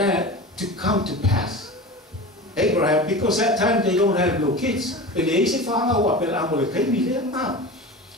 to come to pass Abraham because that time they don't have no kids and they say father wa pe amole kai mi le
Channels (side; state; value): both; normal; correlation 0.32